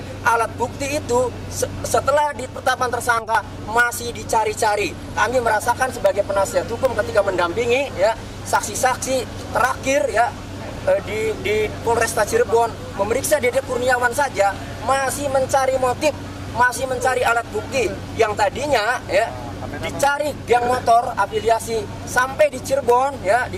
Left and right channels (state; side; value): identical; both; correlation 1.00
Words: alat bukti itu setelah ditetapkan tersangka masih dicari-cari. Kami merasakan sebagai penasihat hukum ketika mendampingi, ya, saksi-saksi terakhir, ya, di Polresta Cirebon memeriksa Dede Kurniawan saja masih mencari motif, masih mencari alat bukti yang tadinya, ya, dicari geng motor afiliasi sampai di Cirebon, ya,